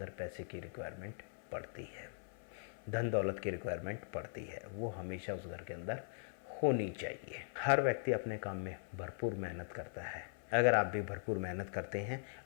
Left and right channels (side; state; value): right; silent; 51 dB below the other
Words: पैसे की रिक्वायरमेंट पड़ती है, धन दौलत की रिक्वायरमेंट पड़ती है, वो हमेशा उस घर के अंदर होनी चाहिए। हर व्यक्ति अपने काम में भरपूर मेहनत करता है। अगर आप भी भरपूर मेहनत करते हैं